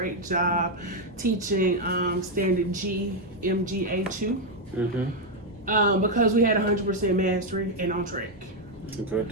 job teaching standard G, MGA2. Because we had 100% mastery and on track.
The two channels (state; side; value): normal; both; correlation 0.02